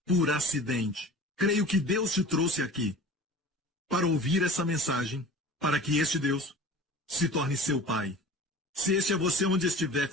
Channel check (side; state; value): both; normal; correlation 0.40